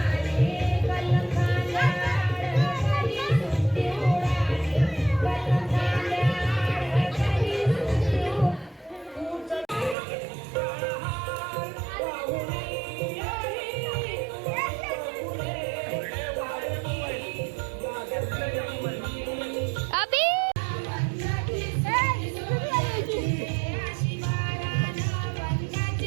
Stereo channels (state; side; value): drops out; left; at 10.0 s